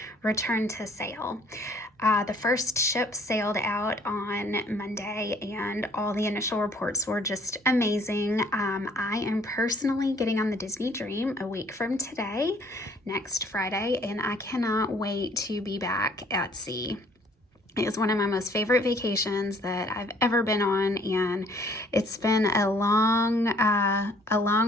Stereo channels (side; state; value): both; normal; correlation 0.59